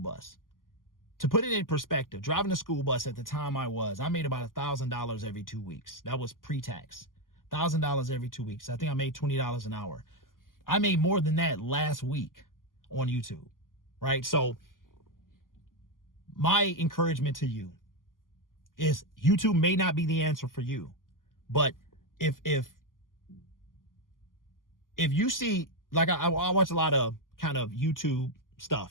To put it in perspective, driving a school bus at the time I made about $1,000 every 2 weeks. That was pre-tax. $1,000 every 2 weeks. I think I made $20 an hour. I made more than that last week on YouTube, right? So my encouragement to you is YouTube may not be the answer for you, but if you see, like I watch a lot of kind of YouTube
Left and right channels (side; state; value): right; late; 0.90 ms